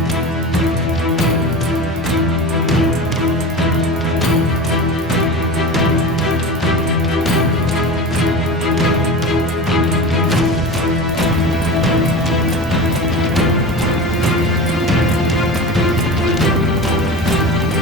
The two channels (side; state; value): both; normal; correlation 0.31